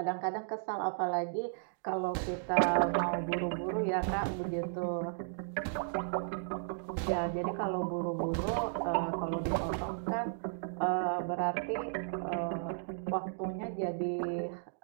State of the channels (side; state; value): left; silent; digital silence